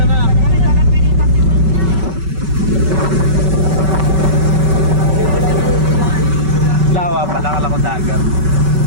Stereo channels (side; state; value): left; late; 5.3 ms